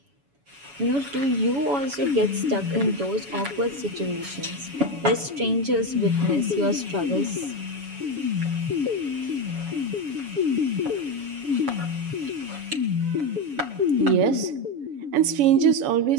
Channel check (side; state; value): left; late; 7.1 ms